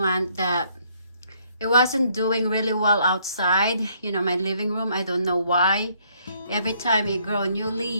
that it wasn't doing really well outside, you know, my living room. I don't know why. Every time it grow a new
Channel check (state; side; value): inverted; both; correlation -0.67